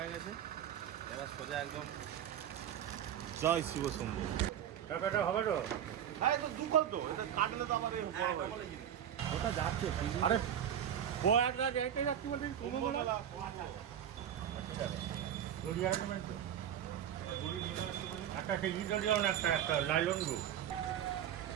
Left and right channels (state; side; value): quieter; left; 9.9 dB